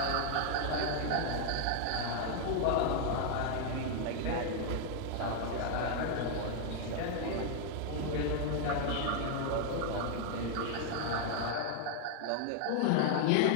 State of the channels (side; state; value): both; different; correlation 0.00